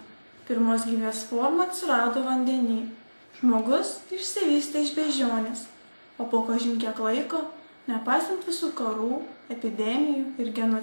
Pirmos gyvės forma atsirado vandenyje. Žmogus išsivystė iš beždžionės, o po kažin kiek laiko, nepaisant visų karų, epidemijų ir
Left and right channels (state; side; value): inverted; both; correlation -1.00